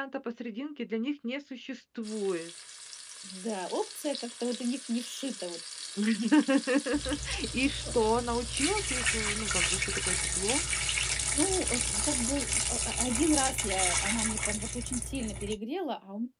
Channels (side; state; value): both; identical; correlation 1.00